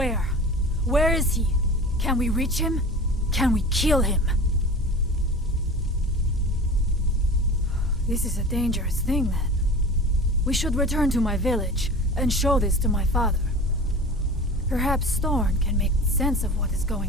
Where is he? Can we reach him? Can we kill him? This is a dangerous thing, then. We should return to my village and show this to my father. Perhaps Storn can make sense of what is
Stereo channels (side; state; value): both; normal; correlation 0.35